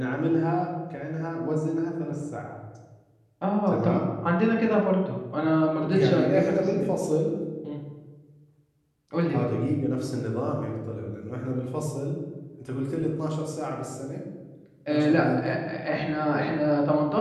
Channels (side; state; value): both; identical; correlation 1.00